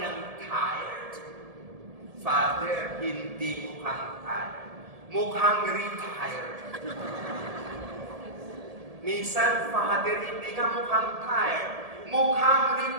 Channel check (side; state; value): left; late; 1.7 ms